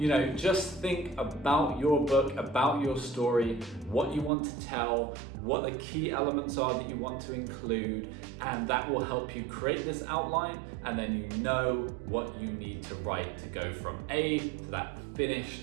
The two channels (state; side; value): drops out; left; at 4.3 s